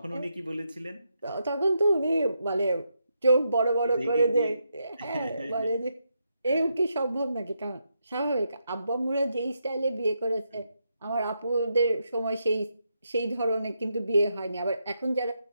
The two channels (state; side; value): inverted; both; correlation -0.82